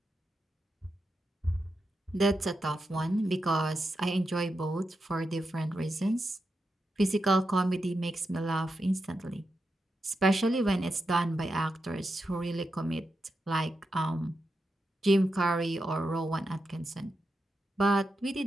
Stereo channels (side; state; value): both; normal; correlation 0.87